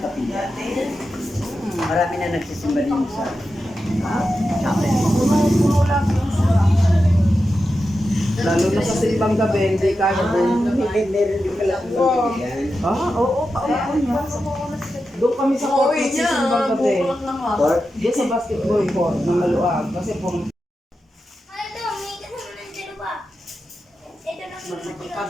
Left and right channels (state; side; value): normal; both; correlation 0.90